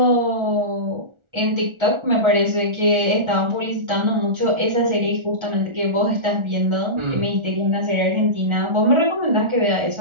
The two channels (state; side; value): late; left; 1.4 ms